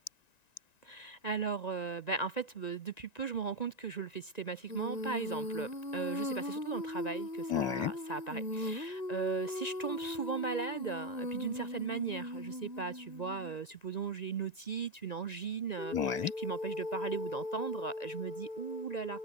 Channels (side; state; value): right; late; 1.9 ms